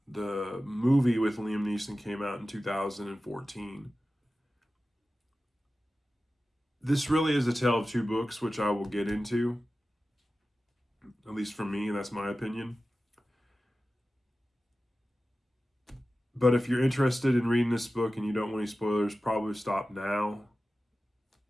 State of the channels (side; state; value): both; normal; correlation 0.95